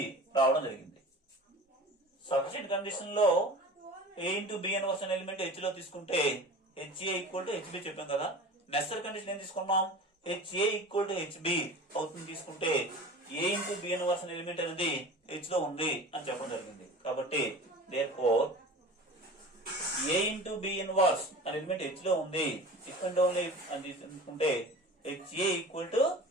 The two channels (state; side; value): normal; both; correlation 0.37